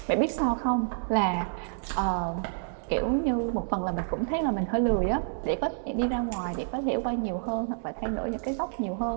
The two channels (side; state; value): left; silent; digital silence